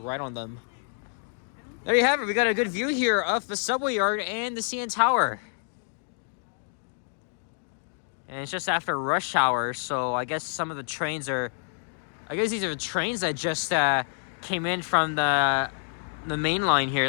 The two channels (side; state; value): right; silent; 60 dB below the other